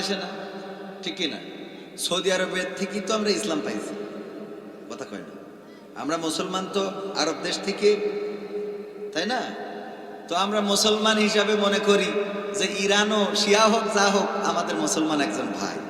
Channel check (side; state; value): both; identical; correlation 1.00